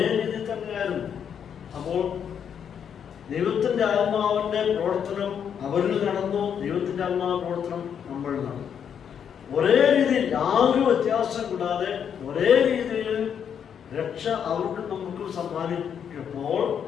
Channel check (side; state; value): right; quieter; 8.1 dB